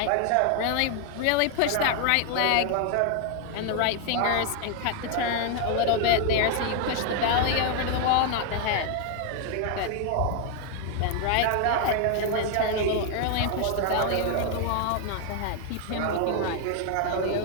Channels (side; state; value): both; different; correlation 0.00